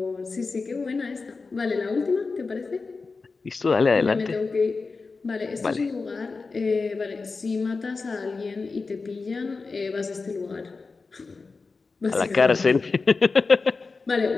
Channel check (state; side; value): quieter; right; 4.2 dB